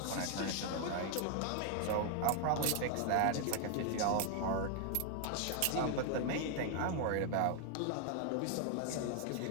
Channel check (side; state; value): both; different; correlation 0.00